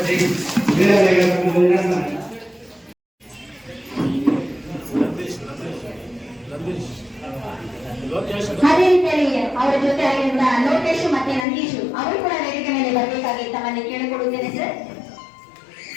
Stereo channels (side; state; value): right; drops out; at 11.5 s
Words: ಅದೇ ರೀತಿಯಲ್ಲಿ ಅವರ ಜೊತೆ ಆಗಿರುವ ಲೋಕೇಶ್ ಮತ್ತೆ ನಂದೀಶ್ ಅವರು ಕೂಡ ವೇದಿಕೆ ಮೇಲೆ ಬರಬೇಕಾಗಿ ತಮ್ಮಲ್ಲಿ ಕೇಳಿಕೊಡುತ್ತೇನೆ ಸರ್.